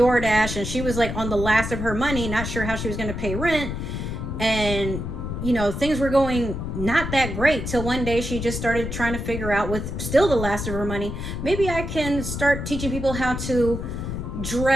and she was like on the last of her money, not sure how she was going to pay rent. And, you know, things were going not that great till one day she just started trying to figure out, with still the last of her money, maybe I can start teaching people how to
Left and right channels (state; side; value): noise; left; rumble, 5 dB below the sound